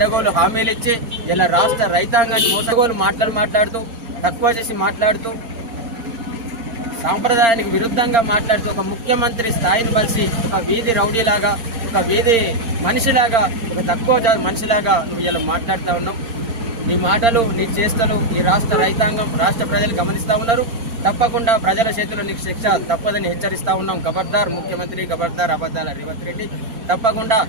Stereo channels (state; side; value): late; left; 4.4 ms